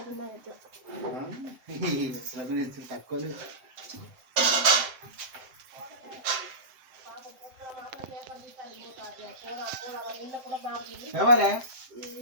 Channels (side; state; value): left; late; 7.8 ms